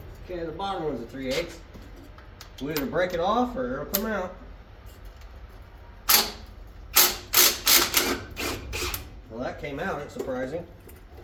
Okay, the bottom one's a 3/8. We'll either break it off or it'll come out. Well, that came out, it's surprising.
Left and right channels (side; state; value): both; identical; correlation 1.00